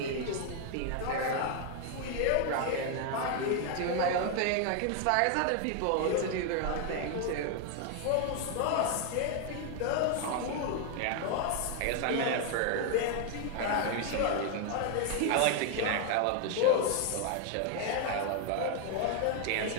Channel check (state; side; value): different; both; correlation 0.00